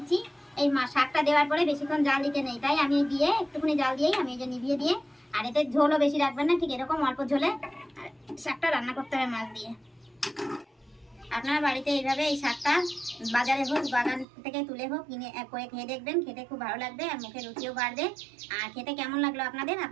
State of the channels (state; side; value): drops out; left; at 14.2 s